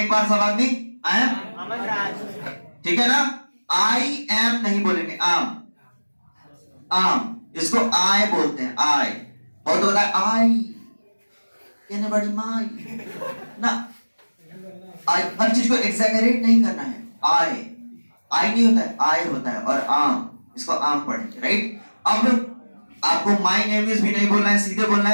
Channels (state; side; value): inverted; both; correlation -1.00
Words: एक बार सब आदमी। आई एम अमन राज, ठीक है ना। आई एम नहीं बोलेंगे, आम, आम। इसको आई बोलते हैं, आई। बहुत होता है आई कहने बड़ी माई ना, आई हर चीज को एग्जैगरेट नहीं करना है। आई आई नहीं होता है, आई होता है। और आम, इसको आम पढ़ेंगे, राइट। अब आपको माई नेम इज भी नहीं बोलना है, सीधे बोलना